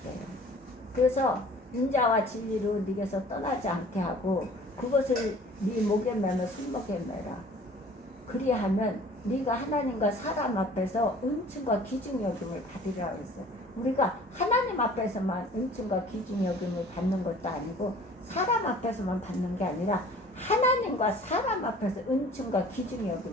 그래서 인자와 진리로 네게서 떠나지 않게 하고 그것을 네 목에 매며 손목에 매라. 그리하면 네가 하나님과 사람 앞에서 은총과 귀중 여김을 받으리라 그랬어요. 우리가 하나님 앞에서만 은총과 귀중 여김을 받는 것도 아니고 사람 앞에서만 받는 게 아니라 하나님과 사람 앞에서 은총과 귀중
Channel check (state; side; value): normal; both; correlation 0.49